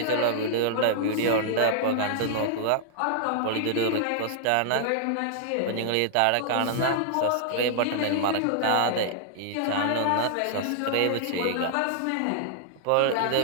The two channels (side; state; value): both; different; correlation -0.01